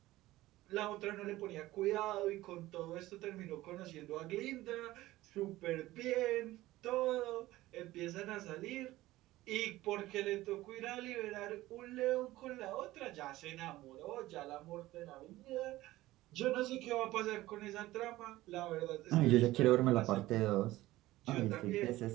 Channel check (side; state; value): left; quieter; 17.0 dB